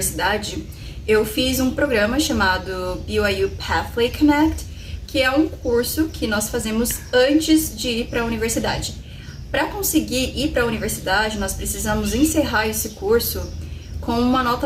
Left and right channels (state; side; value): identical; both; correlation 1.00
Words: eu fiz um programa chamado BYU Pathway Connect, que é um curso que nós fazemos antes de ir para a universidade. Para conseguir ir para a universidade, nós precisamos encerrar esse curso com uma nota